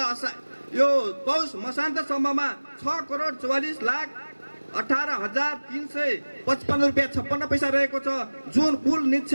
यो पौष मसान्तसम्ममा 6 करोड 44,18,355 रुपियाँ 56 पैसा रहेको छ, जुन कुल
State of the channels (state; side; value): inverted; both; correlation -1.00